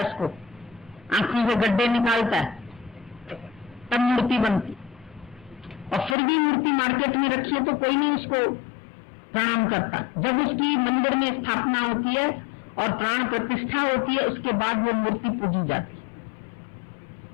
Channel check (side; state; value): right; drops out; at 6.2 s